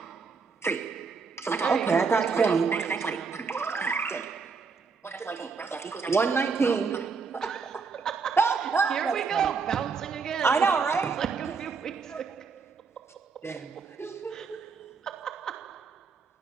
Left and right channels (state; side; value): quieter; left; 5.1 dB